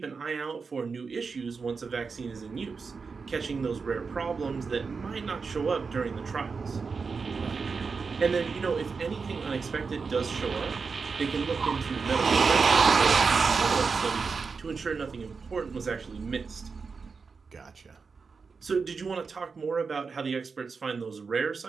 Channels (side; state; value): left; quieter; 5.0 dB